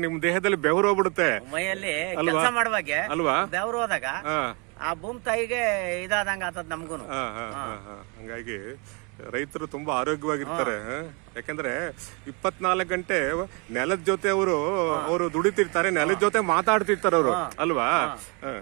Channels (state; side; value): quieter; left; 32.6 dB